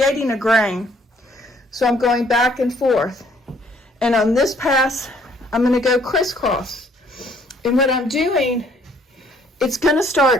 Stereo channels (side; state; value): both; normal; correlation 0.63